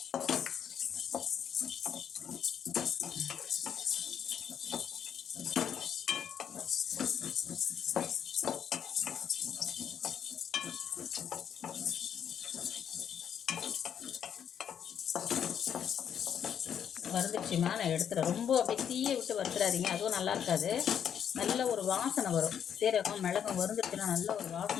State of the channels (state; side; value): quieter; right; 8.6 dB